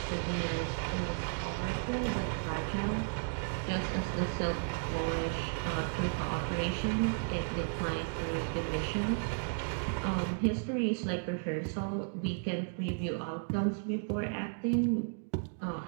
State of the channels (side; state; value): left; silent; digital silence